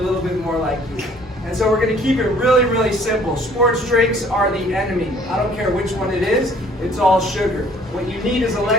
little bit more like you. And so we're going to keep it really, really simple. Sports drinks are the enemy. I don't care which one it is. It's all sugar. What you need is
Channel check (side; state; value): both; normal; correlation 0.57